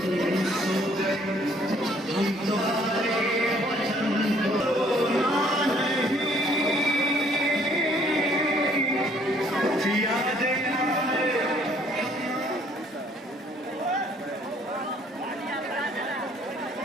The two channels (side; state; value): both; normal; correlation 0.62